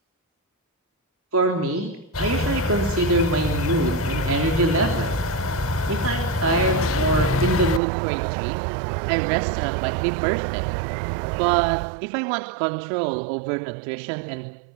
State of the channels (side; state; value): left; drops out; at 7.8 s